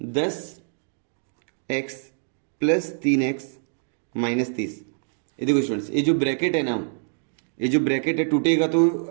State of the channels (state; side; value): silent; left; digital silence